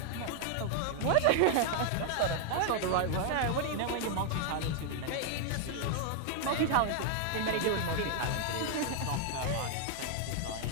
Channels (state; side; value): different; both; correlation 0.00